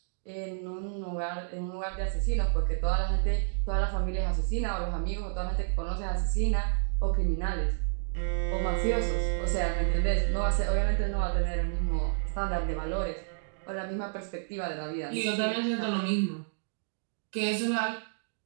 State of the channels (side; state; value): left; silent; digital silence